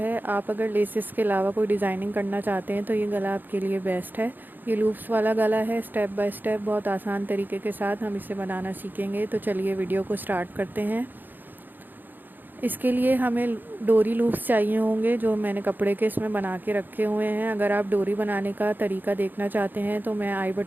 आप अगर लेसेस के अलावा कोई डिज़ाइनिंग करना चाहते हैं तो ये गला आपके लिए बेस्ट है। ये लूप्स वाला गला है। स्टेप बाय स्टेप बहुत आसान तरीके के साथ हम इसे बनाना सीखेंगे। तो चलिए वीडियो को स्टार्ट करते हैं। इसके लिए हमें डोरी लूप्स चाहिए होंगे, जो मैंने कपड़े के इसमें बना के रखे हुए हैं। अगर आप डोरी बनाने का तरीका देखना चाहते हैं तो मैं आई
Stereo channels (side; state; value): left; late; 0.090 ms